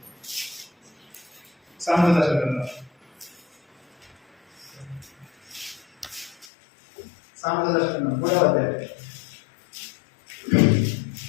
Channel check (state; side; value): drops out; right; at 6.5 s